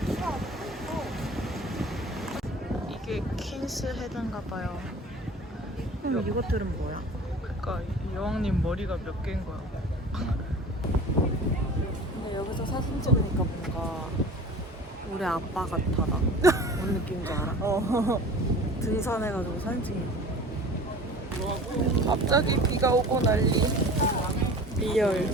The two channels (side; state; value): both; normal; correlation 0.41